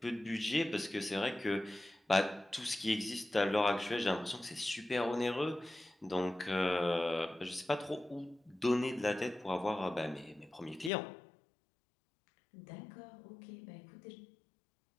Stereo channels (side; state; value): right; drops out; at 10.9 s